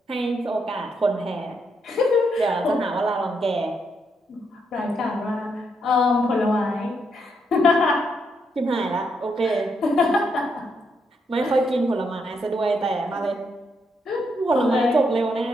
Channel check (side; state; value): both; normal; correlation 0.78